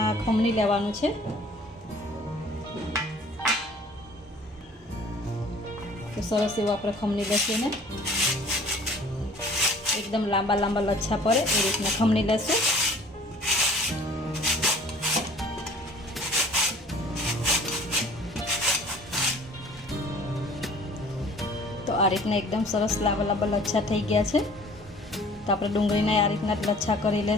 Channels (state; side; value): normal; both; correlation 0.50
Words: खमणी लेवानुं छे। तो सरस एवं आप खमणी लेशुं ने एकदम लांबा लांबा लच्छा पड़े ए रीतना खमणी लेशुं। तो आ रीतना एकदम सरस लांबा लांबा लच्छा थई गया छे। तो आपणे डूंगળીને आ रीतना लच्छा करी